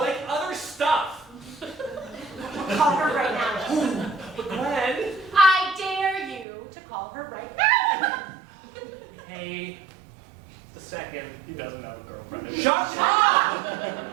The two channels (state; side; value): drops out; left; at 6.5 s